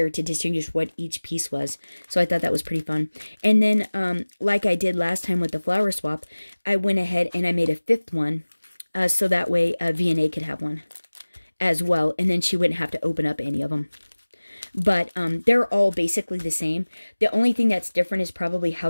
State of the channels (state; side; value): inverted; both; correlation -1.00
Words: to distinguish what each piece was. So I thought that was pretty fun. And then, like I did last time with the flower swap, I went ahead and I made a 5th one, so that way Vianney could have one as well, and then she wouldn't have to open up any of them. But they're all basically the same. The only thing that's different is probably